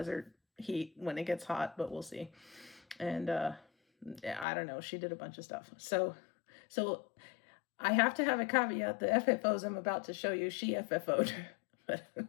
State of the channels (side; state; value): right; drops out; at 4.5 s